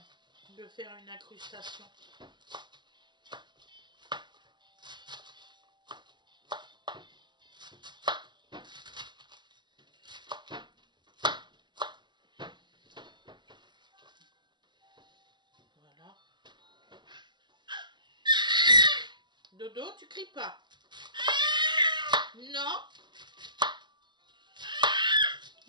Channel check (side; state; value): left; late; 0.21 ms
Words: de faire une incrustation. Voilà. Dodo, tu cries pas. Non.